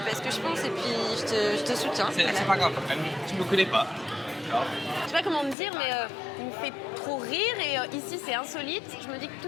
pas ce que je pense et puis je te soutiens. C'est Voilà. pas grave, tu me connais pas. Je sais pas comment me dire, mais il me fait trop rire et ici c'est insolite. Je me dis que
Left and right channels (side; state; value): right; drops out; at 5.6 s